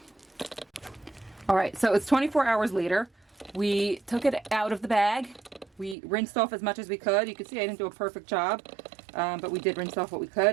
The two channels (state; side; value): drops out; left; at 6.0 s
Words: All right, so it's 24 hours later. We took it out of the bag. We rinsed off as much as we could. You can see I didn't do a perfect job, but we did rinse off what we